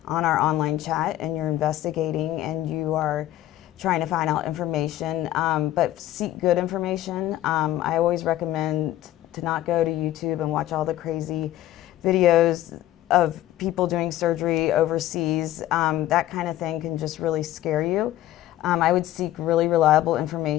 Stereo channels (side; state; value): right; quieter; 14.0 dB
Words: on our online chat and you're investigating and you are trying to find out information, but seek good information. I always recommend to not go to YouTube and watch all the crazy videos of people doing surgery overseas. That kind of thing can just really scare you. I would seek really reliable